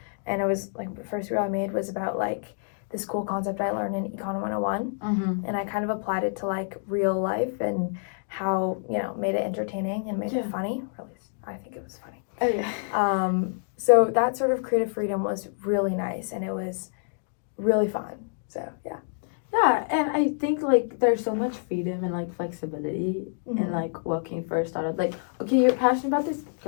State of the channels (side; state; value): right; silent; digital silence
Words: And it was like the first reel I made was about like this cool concept I learned in Econ 101. Mm-hmm. And I kind of applied it to like real life and how, you know, made it entertaining and made it funny. Or at least I think it was funny. Oh yeah. So that sort of creative freedom was really nice and it was really fun. So yeah. Yeah, and I think like there's so much freedom and like flexibility in like working for a startup. Like, okay, you're passionate about this,